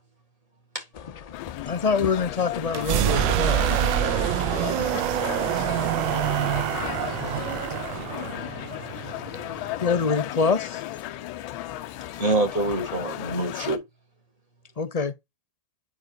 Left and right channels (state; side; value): late; right; 1.8 ms